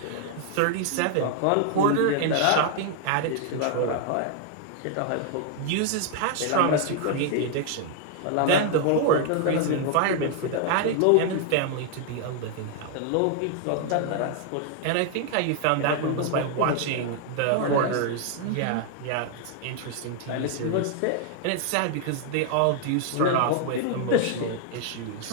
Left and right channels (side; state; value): both; different; correlation 0.00